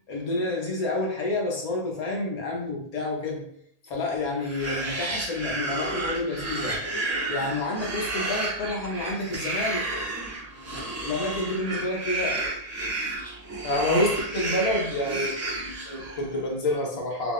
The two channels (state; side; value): late; right; 1.8 ms